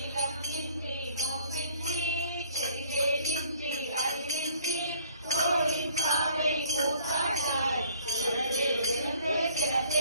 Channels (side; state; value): both; inverted; correlation -0.58